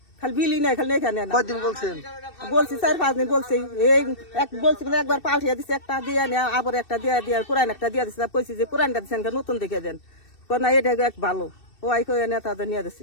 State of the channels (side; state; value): right; late; 2.7 ms